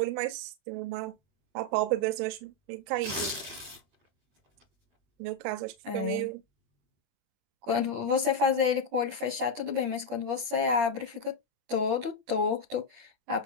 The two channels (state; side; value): late; left; 21 ms